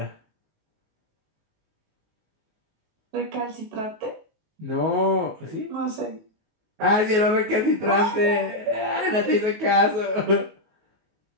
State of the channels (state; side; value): late; left; 19 ms